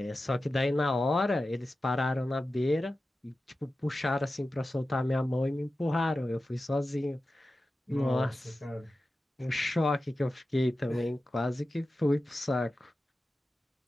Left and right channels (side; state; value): both; normal; correlation 0.94